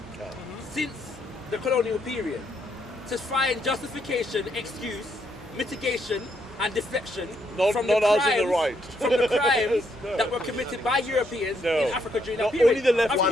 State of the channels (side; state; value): both; normal; correlation 0.75